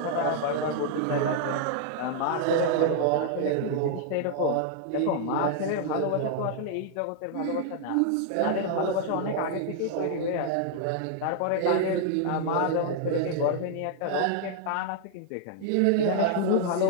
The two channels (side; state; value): both; different; correlation -0.01